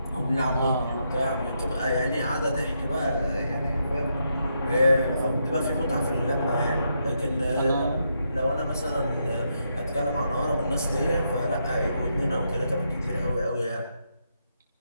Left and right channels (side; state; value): both; inverted; correlation -0.80